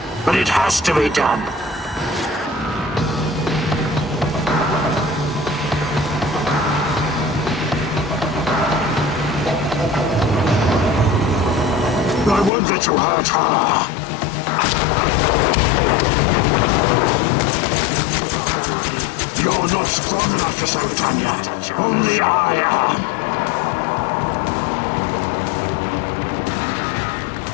but it has to be done. I won't let you hurt her. Give up already. You're not strong enough to show it on your Tatiana. I am.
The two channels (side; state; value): right; drops out; at 12.5 s